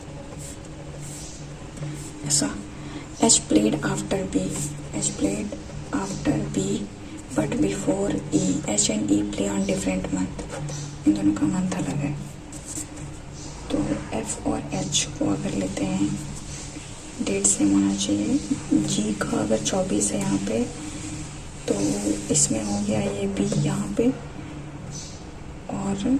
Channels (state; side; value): identical; both; correlation 1.00